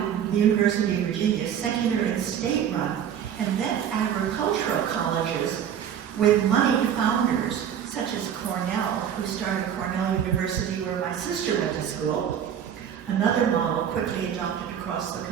the University of Virginia, secular and state-run, and then agricultural colleges with moneyed founders, such as Cornell, who started Cornell University where my sister went to school, another model quickly adopted across the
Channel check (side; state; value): left; quieter; 9.0 dB